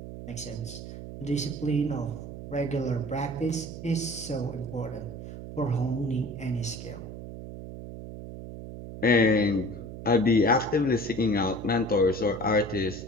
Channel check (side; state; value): right; noise; hum, 10 dB below the sound